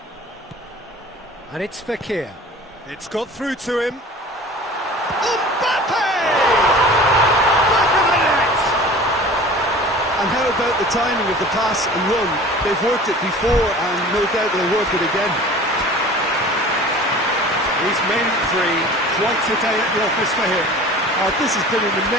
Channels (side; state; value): both; normal; correlation 0.42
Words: And it's Fekir. It's got through to him. Mbappe! Back of the net! And how about the timing of the pass and run? They've worked it before, and no doubt they'll work it again. He's made it 3. Quite a day at the office for him. This has been an